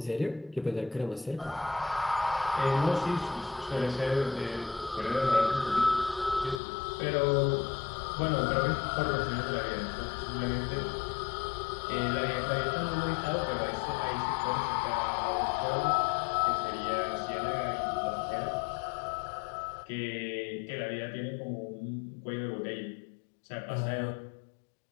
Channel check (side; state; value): right; drops out; at 6.6 s